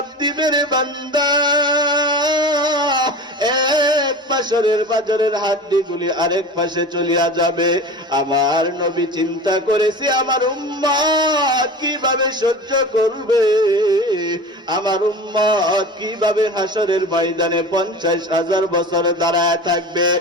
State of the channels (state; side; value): normal; both; correlation 0.33